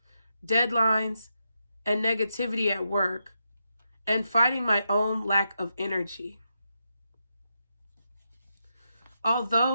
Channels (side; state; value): both; inverted; correlation -0.84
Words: deadlines, and negativity at work, and fighting my own lack of energy.